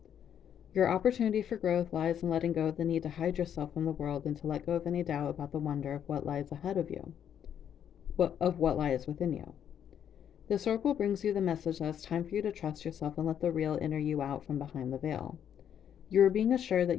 Your opportunity for growth lies in letting go of the need to hide yourself from the world and to let go of any doubt about the wonder of what lies ahead of you, of what lies within you. This oracle brings you the message that it's time for you to trust yourself and let the real inner you out from behind the veil. You are being assured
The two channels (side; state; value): right; quieter; 9.2 dB